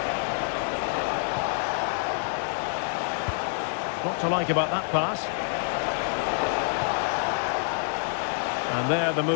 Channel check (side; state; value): right; silent; digital silence